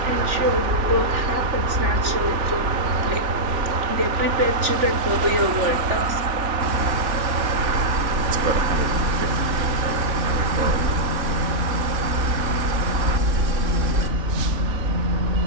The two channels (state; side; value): late; left; 3.4 ms